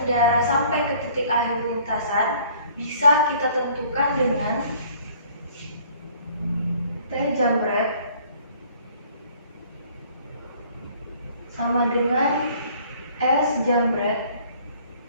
sampai ke titik akhir lintasan bisa kita tentukan dengan T jambret sama dengan S jambret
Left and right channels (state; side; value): inverted; both; correlation -0.56